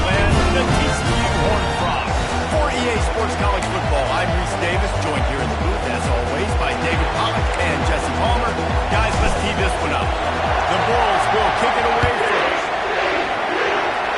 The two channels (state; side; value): identical; both; correlation 1.00